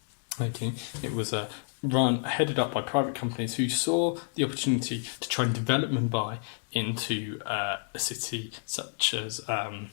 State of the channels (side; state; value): right; silent; digital silence